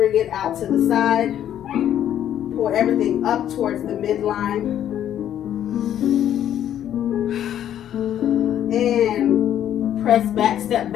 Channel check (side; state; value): right; quieter; 10.7 dB